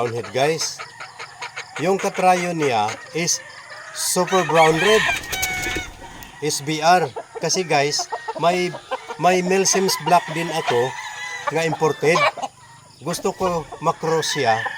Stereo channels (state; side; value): identical; both; correlation 1.00